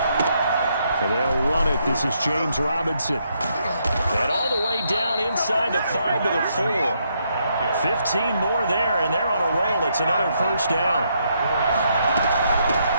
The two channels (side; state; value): both; inverted; correlation -0.76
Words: And they'll run it. This is James Robinson. And all the way down inside the 5 to the 4. 15 more there, and they're on a roll. It's another first down.